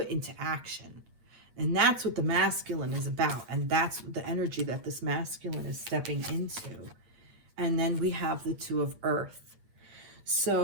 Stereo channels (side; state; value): left; late; 8.5 ms